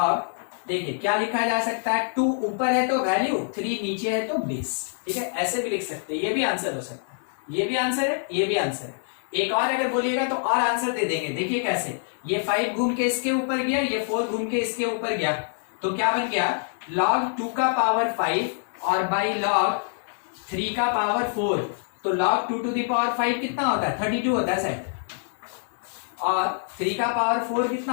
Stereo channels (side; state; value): right; silent; 61 dB below the other